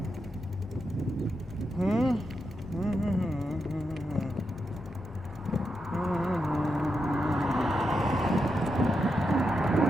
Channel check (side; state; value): both; normal; correlation 0.86